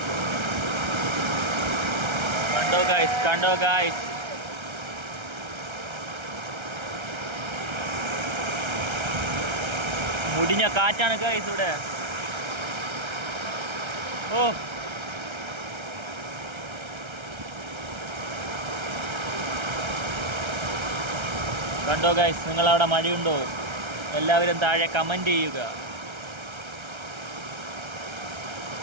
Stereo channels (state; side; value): late; left; 1.3 ms